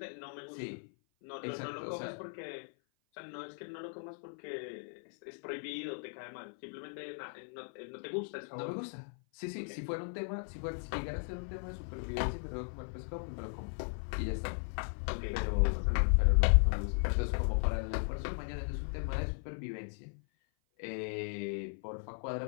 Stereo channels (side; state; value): right; silent; 53 dB below the other